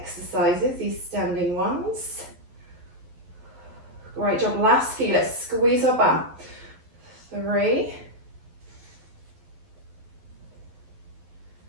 these standing ones. Great job. Last few. Let's squeeze our bum. 3,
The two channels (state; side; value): late; left; 11 ms